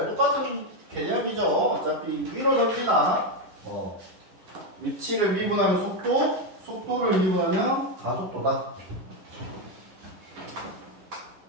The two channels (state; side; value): late; left; 10 ms